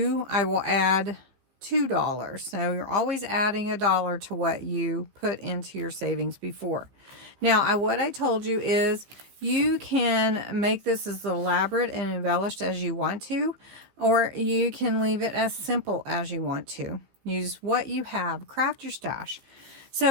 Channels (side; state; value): left; late; 15 ms